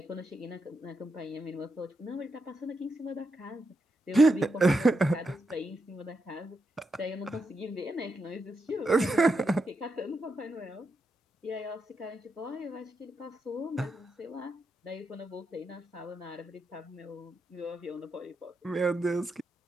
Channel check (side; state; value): both; normal; correlation 0.84